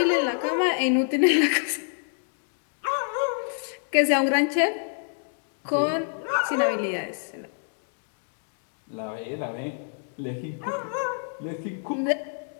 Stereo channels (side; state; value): right; silent; 60 dB below the other